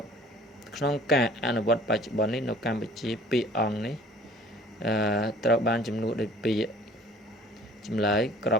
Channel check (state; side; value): normal; both; correlation 0.51